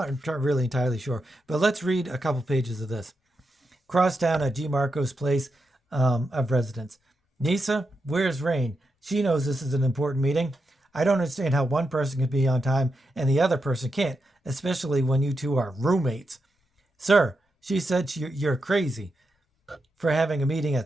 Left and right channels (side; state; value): both; normal; correlation 0.86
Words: really entirely sure, but let's read a couple pages of this. Crosstown at G. Marco's place of residence. Nyssa, where's Rain? She knows this is an important meeting. I don't understand how one person can be on time and the other person can't, especially when you two are roommates. Sir, she said you're crazy for having a meeting